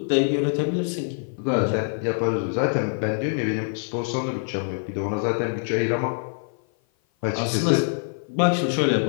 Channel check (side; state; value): right; silent; 55 dB below the other